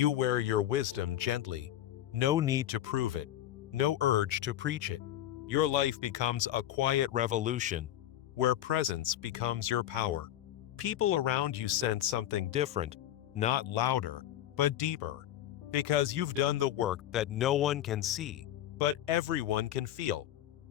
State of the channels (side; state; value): right; quieter; 12.5 dB